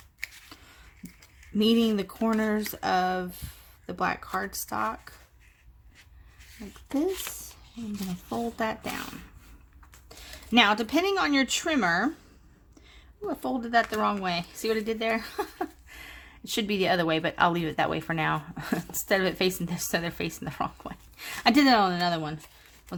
meeting the corners of the black cardstock like this. I'm going to fold that down. Now, depending on your trimmer, ooh, I folded that the wrong way. See what I did there? It should be the other way, but I'll leave it that way for now. Instead of it facing this, so they're facing the wrong way. I did that on another one.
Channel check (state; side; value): identical; both; correlation 1.00